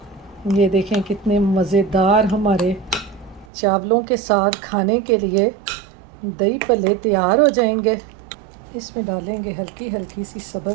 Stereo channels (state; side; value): drops out; left; at 3.5 s